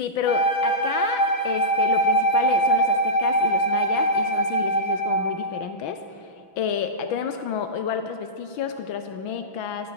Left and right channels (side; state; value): right; late; 6.0 ms